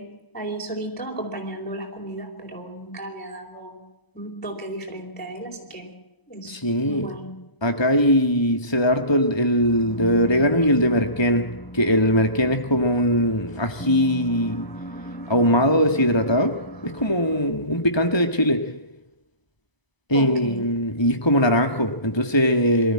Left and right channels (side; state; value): right; late; 1.0 ms